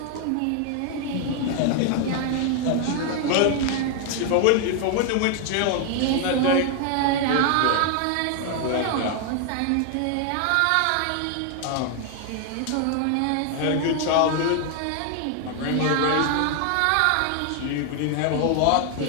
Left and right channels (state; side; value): different; both; correlation 0.00